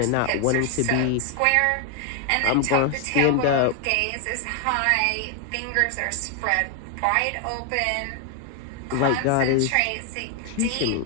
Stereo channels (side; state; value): both; different; correlation 0.00